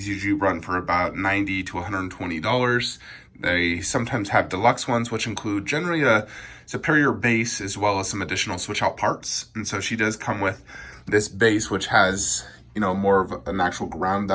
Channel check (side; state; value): both; identical; correlation 1.00